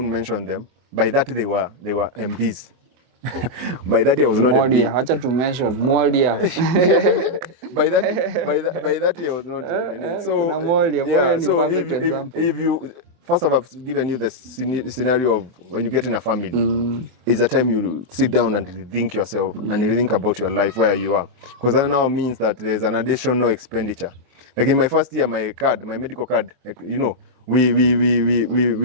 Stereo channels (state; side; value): late; left; 23 ms